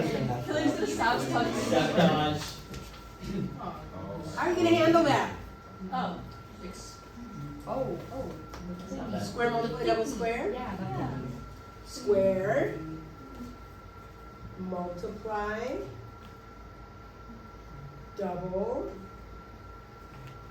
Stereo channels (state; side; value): identical; both; correlation 1.00